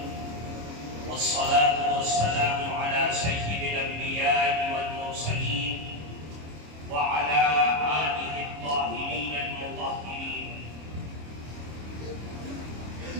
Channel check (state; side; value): late; left; 26 ms